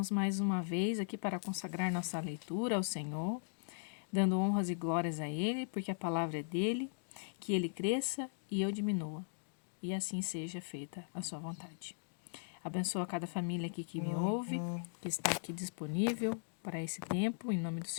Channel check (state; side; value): silent; right; digital silence